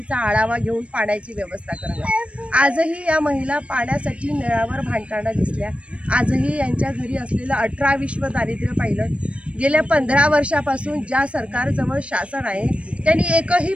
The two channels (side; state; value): left; late; 0.061 ms